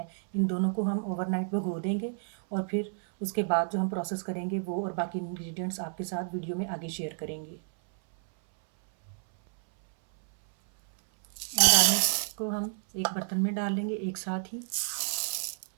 इन दोनों को हम ओवरनाइट भिगो देंगे और फिर उसके बाद जो हम प्रोसेस करेंगे वो और बाकी इंग्रेडिएंट्स आपके साथ वीडियो में आगे शेयर करेंगे। दाल को हम एक बर्तन में डाल लेंगे एक साथ ही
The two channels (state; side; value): silent; left; 58 dB below the other